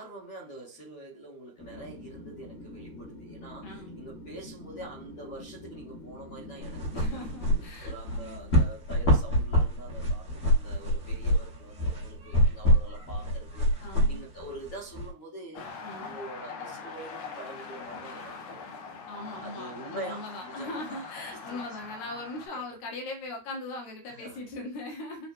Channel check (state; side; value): late; right; 12 ms